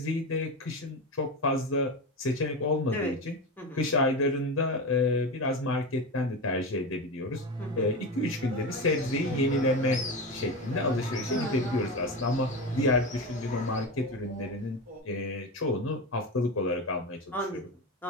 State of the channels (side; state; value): both; normal; correlation 0.21